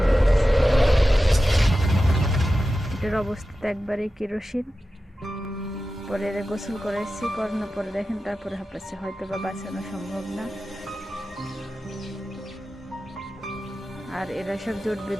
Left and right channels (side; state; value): both; normal; correlation 0.93